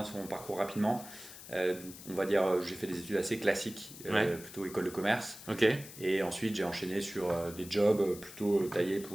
sur mon parcours rapidement, on va dire, j'ai fait des études assez classiques, Ouais. plutôt école de commerce. Ok. Et ensuite, j'ai enchaîné sur des jobs plutôt taillés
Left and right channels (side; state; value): left; noise; hiss, 15 dB below the sound